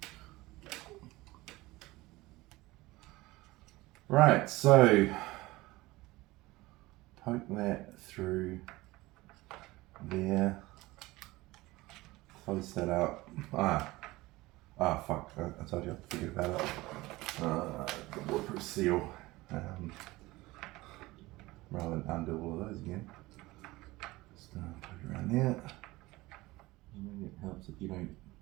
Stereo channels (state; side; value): quieter; left; 20.0 dB